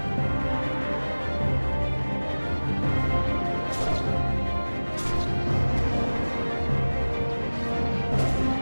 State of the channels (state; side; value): inverted; both; correlation -1.00